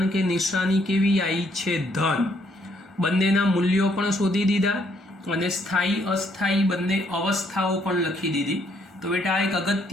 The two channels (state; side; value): normal; both; correlation 0.69